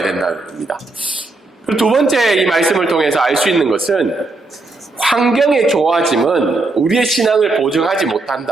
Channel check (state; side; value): quieter; left; 3.2 dB